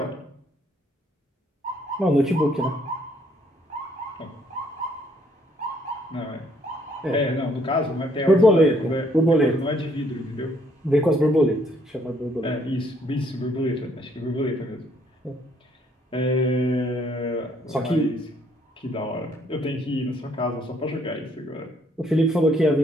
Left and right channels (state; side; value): normal; both; correlation 0.67